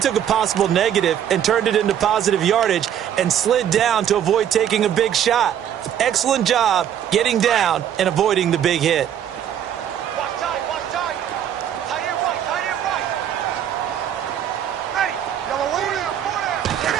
a possible negative and turned it into positive yardage and slid down to avoid taking a big shot. Excellent job getting down and avoiding the big hit. Watch tight. Tight end right. Ready. Yellow waiting.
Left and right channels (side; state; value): left; quieter; 9.9 dB